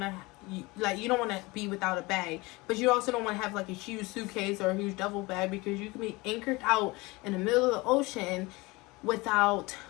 to be without a bag, but you also don't want to have like a huge suitcase or a huge duffel bag, because you can be anchored out in the middle of the ocean without,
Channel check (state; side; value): quieter; right; 23.4 dB